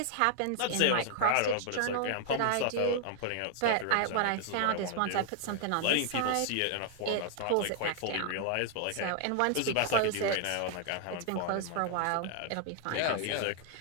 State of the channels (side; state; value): both; different; correlation 0.00